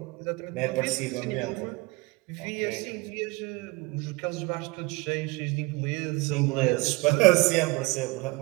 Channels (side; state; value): left; quieter; 23.5 dB